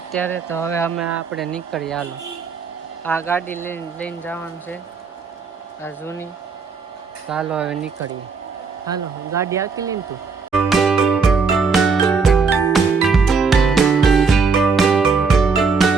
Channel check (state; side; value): quieter; left; 4.9 dB